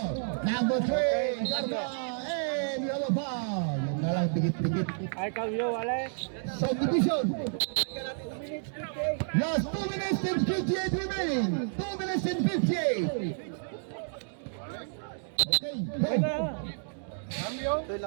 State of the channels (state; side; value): silent; left; digital silence